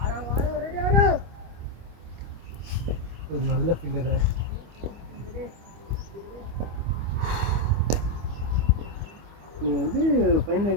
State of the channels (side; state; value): left; late; 24 ms